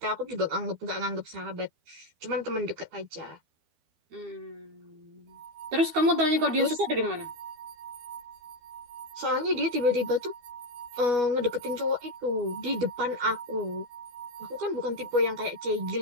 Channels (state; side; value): late; left; 12 ms